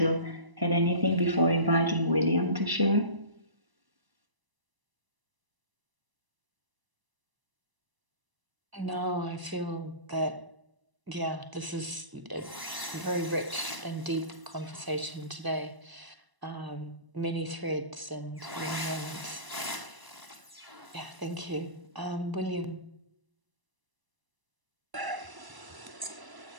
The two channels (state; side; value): late; left; 1.0 ms